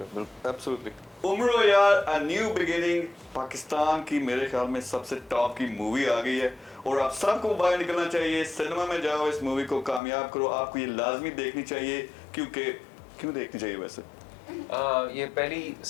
बिल्कुल। एब्सोल्युटली। उम्रो यार, अ न्यू बिगिनिंग, पाकिस्तान की मेरे ख्याल में सबसे टॉप की मूवी आ गई है और आप सबको बाहर निकलना चाहिए, सिनेमा में जाओ, इस मूवी को कामयाब करो। आपको ये लाजमी देखनी चाहिए, क्योंकि क्यों देखनी चाहिए वैसे? ये पहली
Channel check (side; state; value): right; drops out; at 10.0 s